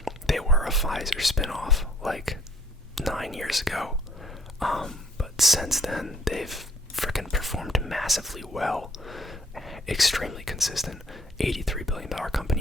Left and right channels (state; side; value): normal; both; correlation 0.62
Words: They were a Pfizer spinoff like 9 years ago. But since then, they've freaking performed massively well. Extremely consistent. $83 billion